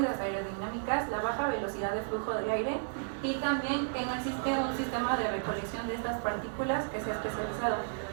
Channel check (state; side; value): silent; left; digital silence